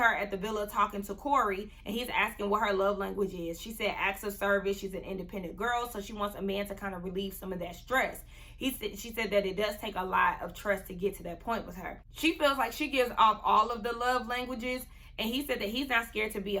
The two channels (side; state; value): both; identical; correlation 1.00